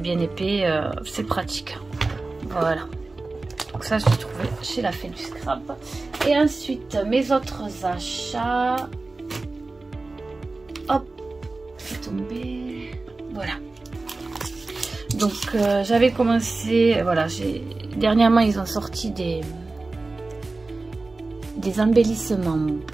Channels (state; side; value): quieter; left; 3.4 dB